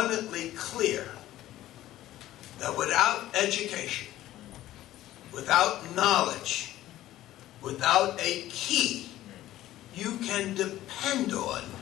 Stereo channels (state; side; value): quieter; right; 14.5 dB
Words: clear that without education, without knowledge, without a key, you can depend on